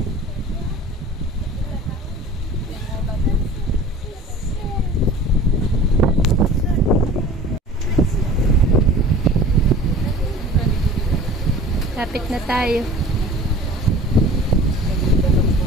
Lapit na tayo.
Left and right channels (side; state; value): both; normal; correlation 0.43